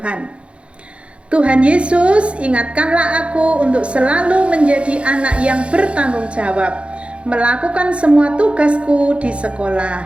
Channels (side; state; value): left; late; 0.060 ms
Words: Tuhan Yesus, ingatkanlah aku untuk selalu menjadi anak yang bertanggung jawab, melakukan semua tugasku di sekolah.